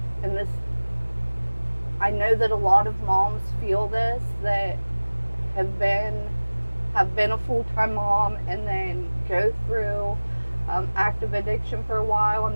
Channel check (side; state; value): both; inverted; correlation -1.00